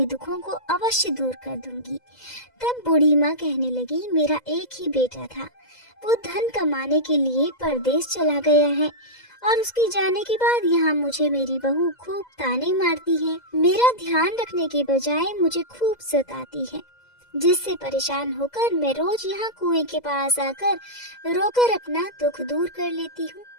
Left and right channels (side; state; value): right; late; 2.0 ms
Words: दुखों को अवश्य दूर कर दूंगी। तब बूढ़ी माँ कहने लगी, मेरा एक ही बेटा था, वो धन कमाने के लिए परदेश चला गया है और उसके जाने के बाद यहाँ मुझे मेरी बहू खूब ताने मारती है। मेरा ध्यान रखने के बजाय मुझे खूब सताती है, जिससे परेशान होकर मैं रोज यहाँ कुएं के पास आकर रोकर अपना दुख दूर कर लेती हूँ।